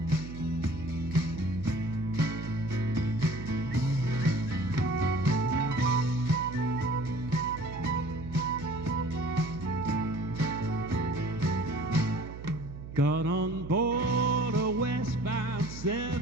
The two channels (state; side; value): noise; right; hum, 11 dB below the sound